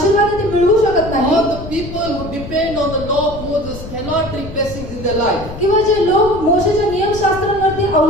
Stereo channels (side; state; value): left; noise; rumble, 12 dB below the sound